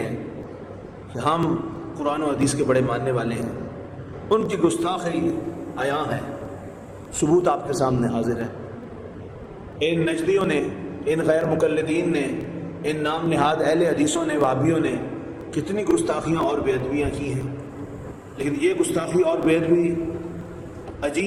کہ ہم قرآن و حدیث کے بڑے ماننے والے ہیں، ان کی گستاخی عیاں ہے، ثبوت آپ کے سامنے حاضر ہے۔ ان نجدیوں نے، ان غیر مقلدین نے، ان نام نہاد اہل حدیثوں نے، وہابیوں نے کتنی گستاخیاں اور بے ادبیاں کی ہیں، لیکن یہ گستاخی اور بے ادبی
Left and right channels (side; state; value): both; identical; correlation 1.00